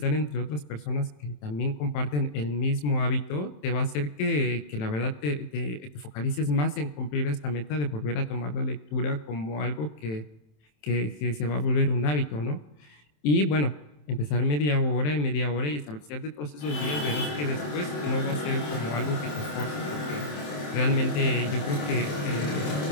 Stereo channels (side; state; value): right; late; 27 ms